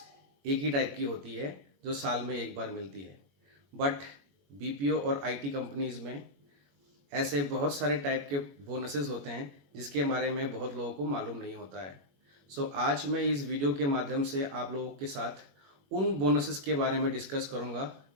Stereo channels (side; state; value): left; late; 21 ms